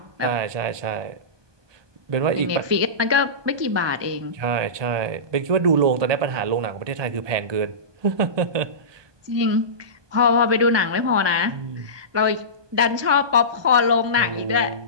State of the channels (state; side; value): late; left; 1.2 ms